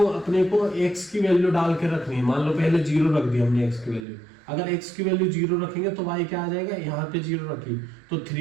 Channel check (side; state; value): left; drops out; at 4.0 s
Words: अपने को x की वैल्यू डाल के रखनी है। मान लो पहले 0 रख दी हमने x की वैल्यू, अगर x की वैल्यू 0 रखेंगे तो y क्या आ जाएगा, यहाँ पे 0 रखी तो